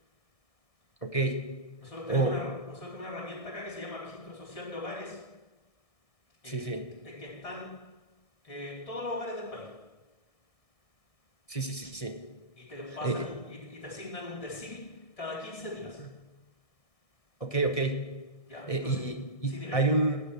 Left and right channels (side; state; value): right; late; 1.6 ms